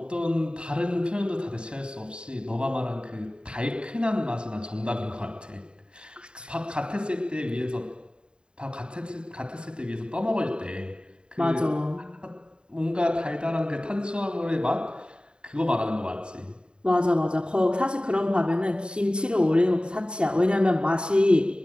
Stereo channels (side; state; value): left; late; 0.051 ms